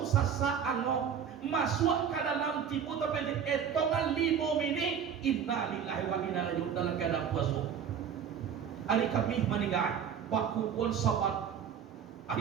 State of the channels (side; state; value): left; quieter; 7.8 dB